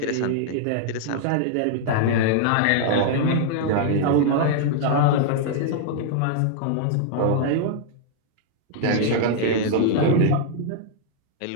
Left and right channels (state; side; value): different; both; correlation -0.01